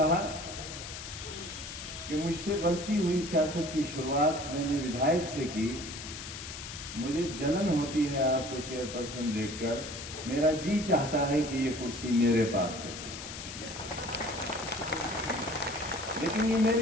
कि मुझसे गलती हुई, सियासत की शुरुआत मैंने विधायक से की। मुझे जलन होती है आपको चेयरपर्सन देखकर। मेरा जी चाहता है कि ये कुर्सी मेरे पास होती, लेकिन ये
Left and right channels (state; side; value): noise; left; hiss, 9 dB below the sound